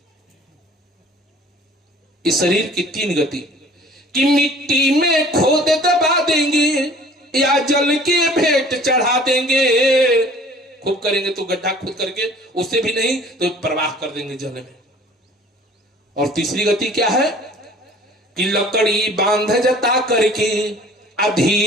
इस शरीर की 3 गति कि मिट्टी में खोद दबा देंगे या जल के भेंट चढ़ा देंगे। खूब करेंगे तो गड्ढा खुद करके, उससे भी नहीं तो प्रवाह कर देंगे जल में। और तीसरी गति क्या है कि लकड़ी बांध जता करके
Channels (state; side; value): normal; both; correlation 0.50